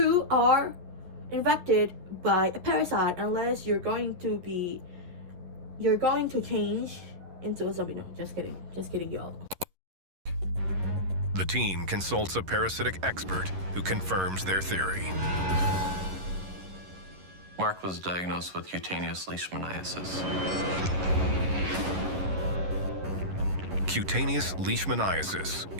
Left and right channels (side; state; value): left; late; 11 ms